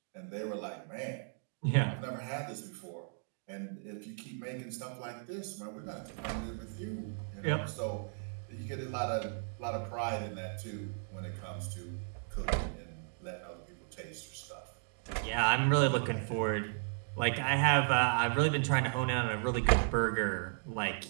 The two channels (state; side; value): silent; left; digital silence